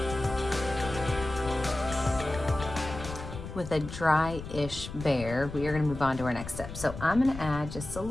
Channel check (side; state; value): left; noise; rumble, 10 dB below the sound